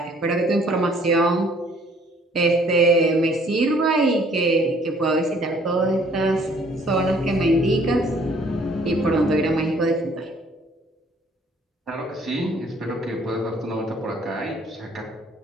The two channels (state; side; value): normal; both; correlation 0.60